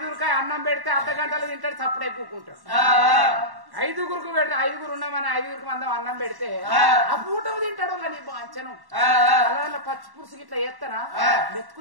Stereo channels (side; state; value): left; late; 1.1 ms